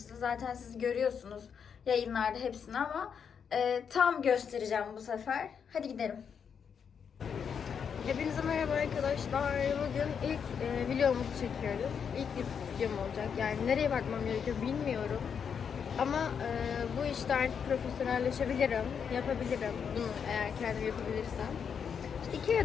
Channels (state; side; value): quieter; right; 7.0 dB